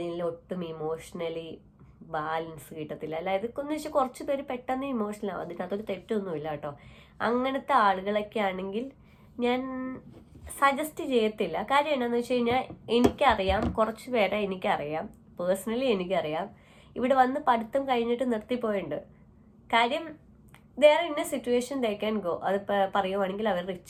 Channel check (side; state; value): both; identical; correlation 1.00